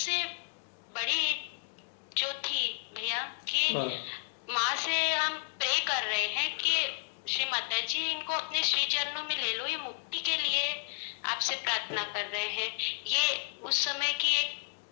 बड़ी जो थी भैया कि माँ से हम प्रे कर रहे हैं कि श्री माता जी इनको अपने श्री चरणों में ले लो, ये मुक्ति के लिए आपसे प्रार्थना कर रहे हैं। ये उस समय की एक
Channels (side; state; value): right; silent; digital silence